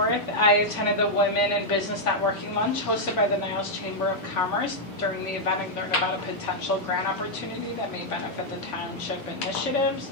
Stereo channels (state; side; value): normal; both; correlation -0.03